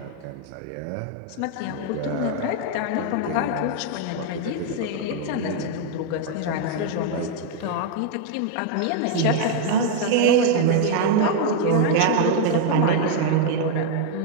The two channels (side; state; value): both; different; correlation 0.00